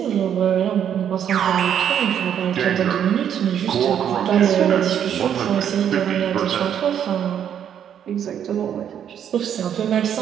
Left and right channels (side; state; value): left; quieter; 9.1 dB